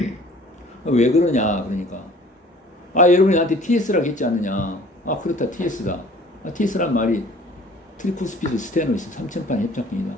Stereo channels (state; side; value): normal; both; correlation 0.50